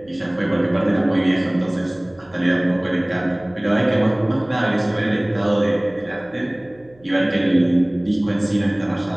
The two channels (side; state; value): right; noise; hum, 29 dB below the sound